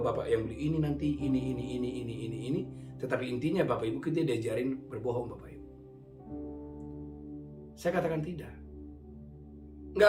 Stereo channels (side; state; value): both; identical; correlation 1.00